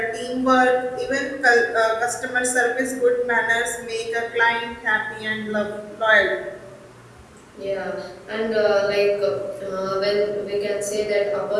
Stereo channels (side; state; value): both; identical; correlation 1.00